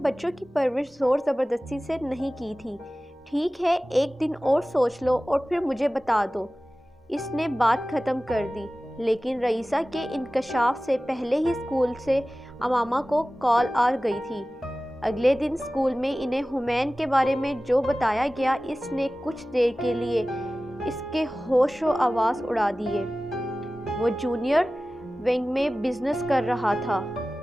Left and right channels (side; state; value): both; normal; correlation 0.96